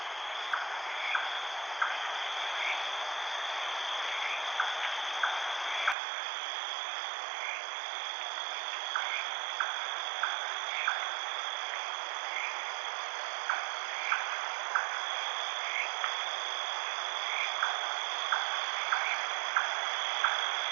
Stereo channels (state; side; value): drops out; left; at 6.0 s